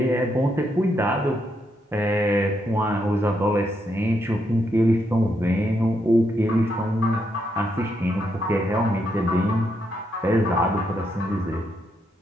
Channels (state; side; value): normal; both; correlation 0.78